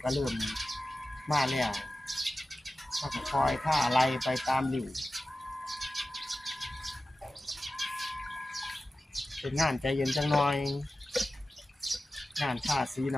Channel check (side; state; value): both; normal; correlation 0.94